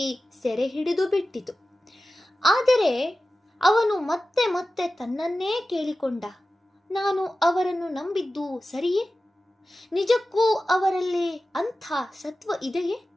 ಸೆರೆ ಹಿಡಿದು ಬಿಟ್ಟಿತು. ಆದರೆ ಅವನು ಮತ್ತೆ ಮತ್ತೆ ತನ್ನನ್ನೇ ಕೇಳಿಕೊಂಡ, ನಾನು ಅವರನ್ನು ನಂಬಿದ್ದು ಸರಿಯೇ? ನಿಜಕ್ಕೂ ಅವರಲ್ಲಿ ಅಂಥ ಸತ್ವ ಇದೆಯೇ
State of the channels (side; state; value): both; normal; correlation 0.94